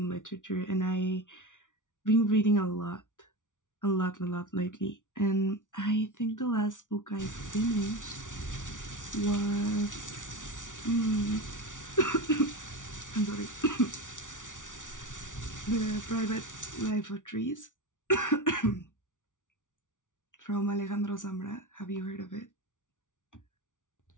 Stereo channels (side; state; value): right; late; 0.87 ms